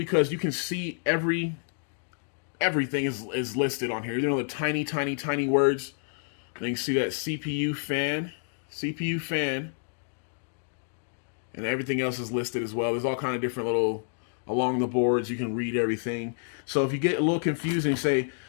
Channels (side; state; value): right; silent; digital silence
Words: you can see everything is listed on here. You know, the tiny, tiny, tiny words. And you can see that CPU fan, and everything else is listed as well. There's all kind of different little along the boards. You can read everything. So if you get a little confused and you say,